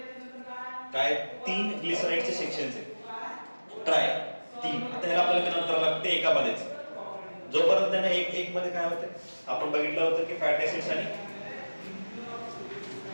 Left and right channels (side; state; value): both; inverted; correlation -1.00